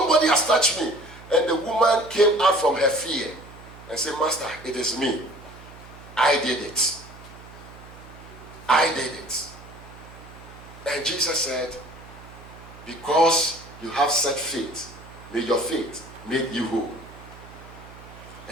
has touched me. And the woman came out from her fear and said, Master, it is me. I did it. I did it. And Jesus said, because you have such faith, may your faith make you whole.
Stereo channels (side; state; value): right; noise; hum, 19 dB below the sound